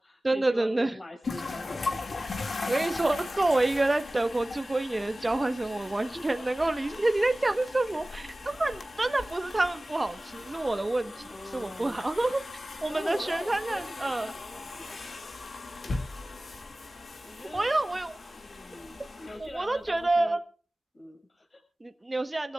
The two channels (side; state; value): both; normal; correlation 0.98